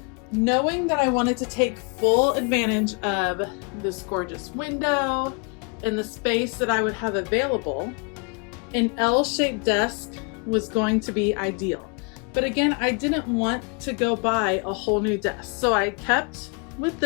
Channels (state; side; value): quieter; right; 34.2 dB